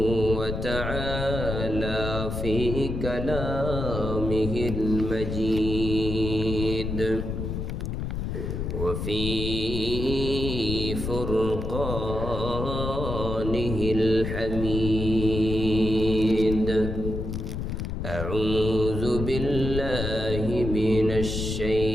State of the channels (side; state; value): left; noise; rumble, 4 dB below the sound